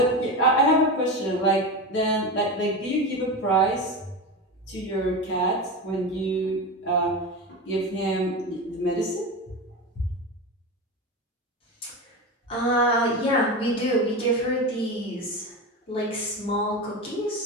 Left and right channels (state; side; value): normal; both; correlation 0.22